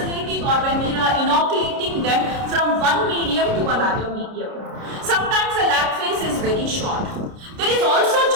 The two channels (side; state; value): left; late; 29 ms